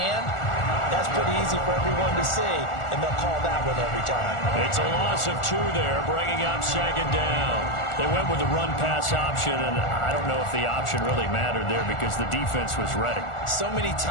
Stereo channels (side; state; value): right; late; 1.4 ms